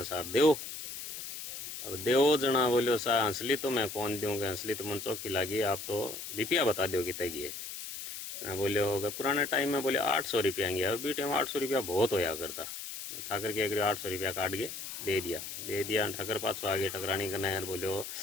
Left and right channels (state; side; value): noise; left; hiss, 8 dB below the sound